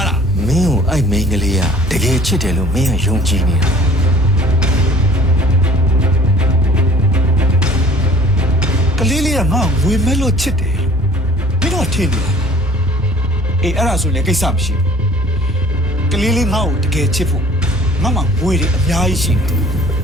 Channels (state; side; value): normal; both; correlation 0.51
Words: းလား မင်းကိုအဲ့မိန်းကလေးကတကယ်ချစ်တယ်လို့မင်းကယုံကြည်နေတာ ကလေးလေးကငါ့ကိုဝေမဲ့လို့ချစ်တယ်မင်းတို့ထင်တယ်အေးအဲ့ဒါဆိုလည်းကိစ္စမရှိဘူးကလေးလေးငါ့ကိုတကယ်ချစ်ဖို့ငါမှဝေတွေအများကြီးရှိတယ်